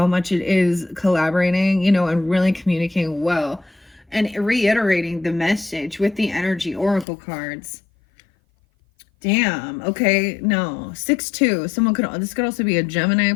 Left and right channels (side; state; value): right; drops out; at 7.1 s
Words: much it is collaborating, and really communicating well and reiterating the message with the energy oracle cards. Damn. Okay. No. 6-2. This could also be a Gemini